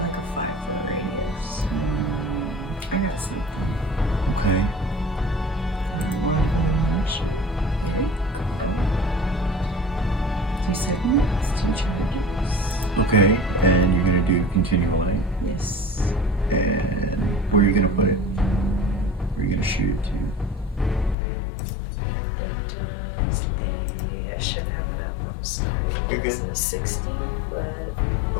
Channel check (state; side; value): drops out; right; at 21.2 s